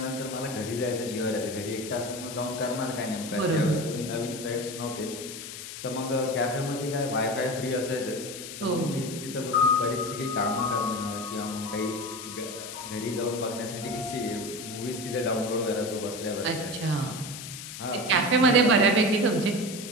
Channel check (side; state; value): left; noise; hiss, 10 dB below the sound